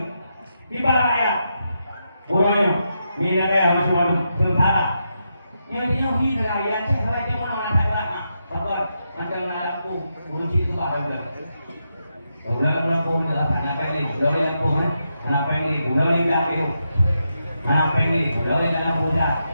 kibar rakyat. Pulaunya minyak masih malu sementara. Yang dia hidup rakyat saya dia mana nak ada apa? Mantan aku kunci tu apa dah? Orang-orang pun dah nak pergi, orang pun ngapain ni? Gulali dah tu. Ngapain ni? Gulali dah budak.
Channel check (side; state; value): both; inverted; correlation -0.84